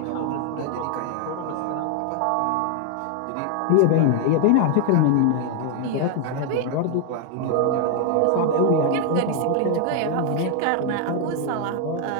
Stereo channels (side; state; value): both; different; correlation 0.00